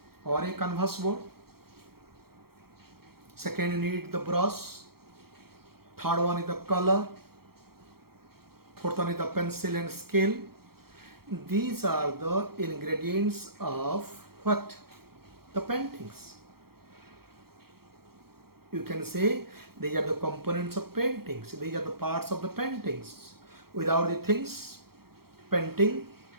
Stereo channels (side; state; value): left; late; 0.94 ms